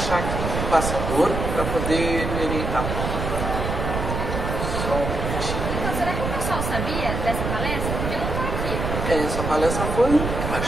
aqui o passador para poder orientar. Só um minutinho. Então, será que o pessoal sabia dessa palestra? Porque eu não estou aqui. Essa palestra foi,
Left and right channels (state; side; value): noise; right; rumble, 3 dB below the sound